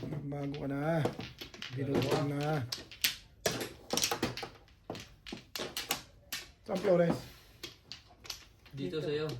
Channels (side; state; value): both; identical; correlation 1.00